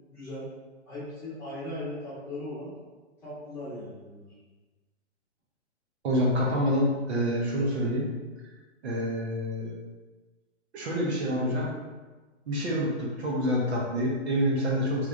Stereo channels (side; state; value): both; normal; correlation -0.16